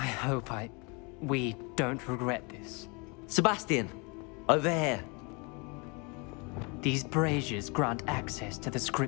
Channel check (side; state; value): right; quieter; 30.9 dB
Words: we don't regret this. Sebastian, over here. These braziers grant access to the